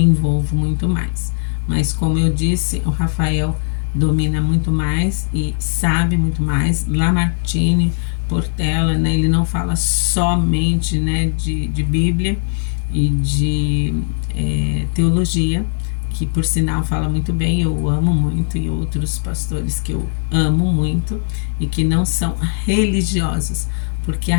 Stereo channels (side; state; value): right; silent; digital silence